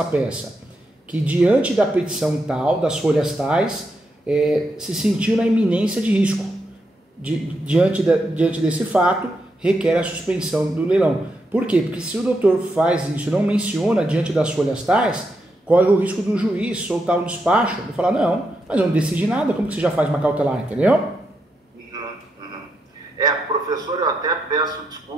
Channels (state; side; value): normal; both; correlation 0.83